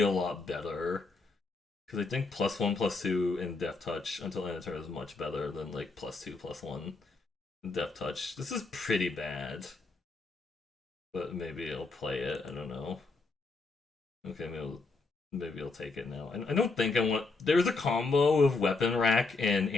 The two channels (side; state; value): right; quieter; 3.8 dB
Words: a lot better. Because I think +1, +2 in Death Touch until end of turn is much better than like +2, +1 in Death Touch. This is pretty bad. But maybe I'll play it. I don't know. Okay, maybe I'll take it now. I don't think I want. There's a combo of Weapon Rack and